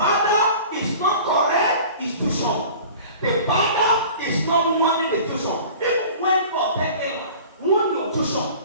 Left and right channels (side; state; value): both; inverted; correlation -0.43